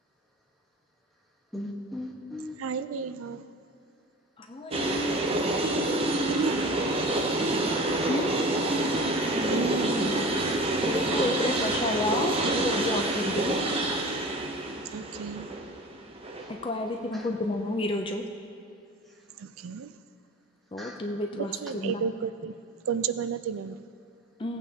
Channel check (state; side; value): normal; both; correlation 0.37